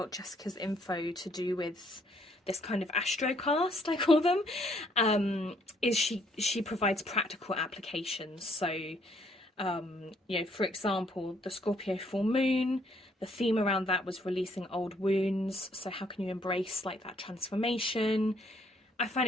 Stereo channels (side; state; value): both; normal; correlation 0.67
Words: Jessica's info to do with this kind of astrocast, I call them, is she provides practical applications. So, you know, for example, the Scorpio full moon, the theme around that was releasing old wounds. So how can you embrace like that transformation? I